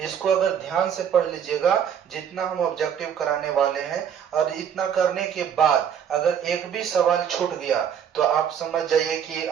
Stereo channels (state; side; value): quieter; left; 8.4 dB